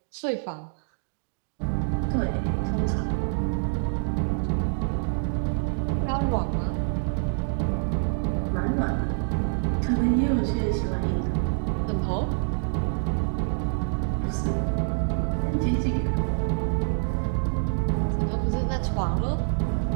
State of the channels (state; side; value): silent; left; digital silence